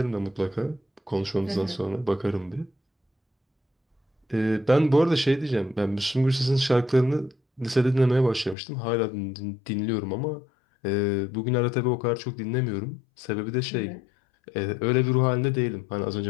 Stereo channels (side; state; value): right; drops out; at 8.6 s